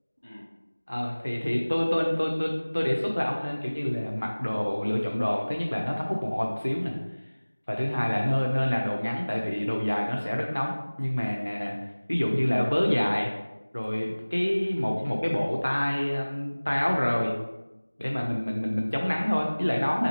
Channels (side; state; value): both; inverted; correlation -1.00